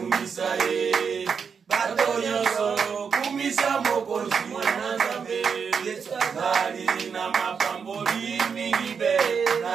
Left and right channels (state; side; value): quieter; left; 6.2 dB